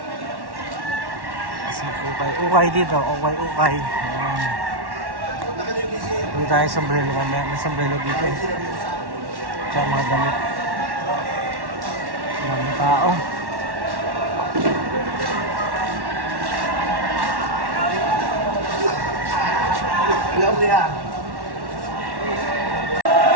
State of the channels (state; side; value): late; left; 1.1 ms